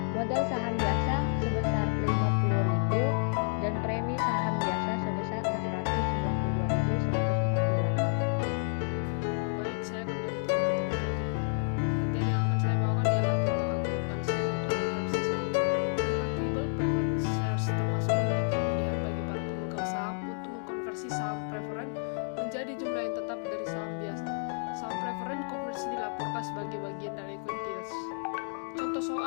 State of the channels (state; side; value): silent; right; 58 dB below the other